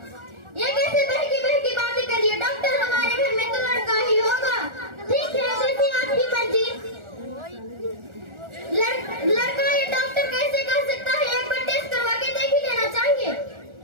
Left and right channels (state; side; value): late; left; 1.4 ms